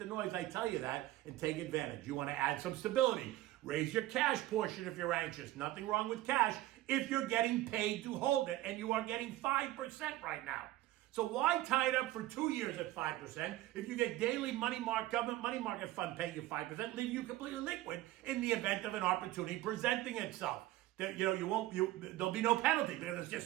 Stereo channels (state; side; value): quieter; left; 16.2 dB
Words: noise, I tell you that, and take advantage. You want to add some stability. Raise your cash portion if you're anxious. Nothing wrong with cash if you're getting paid to hold it, and you are getting 5% right now. So why tie it up for 2 years at 5% if you get daily government money market fund paying you 5%, leaving you completely liquid in the event of an opportunity presenting itself? There'll be no penalty because it's